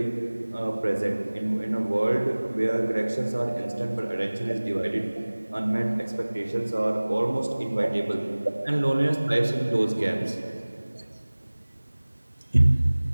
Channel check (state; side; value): inverted; both; correlation -1.00